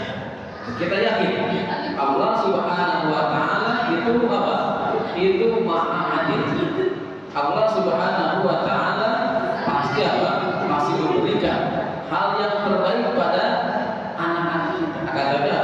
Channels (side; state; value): both; identical; correlation 1.00